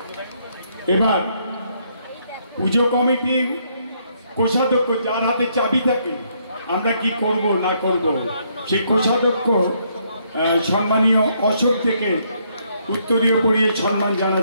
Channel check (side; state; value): both; inverted; correlation -0.72